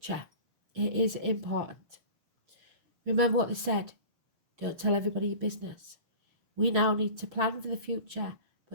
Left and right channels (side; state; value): left; late; 6.4 ms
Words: it is important. Remember what they said. Don't tell everybody your business. We now need to plan for the future,